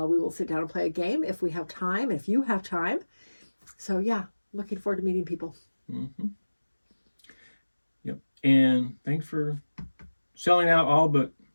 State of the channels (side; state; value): both; inverted; correlation -1.00